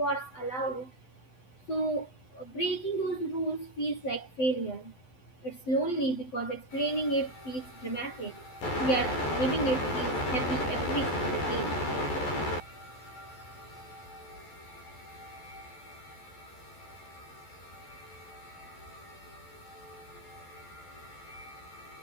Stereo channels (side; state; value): right; late; 11 ms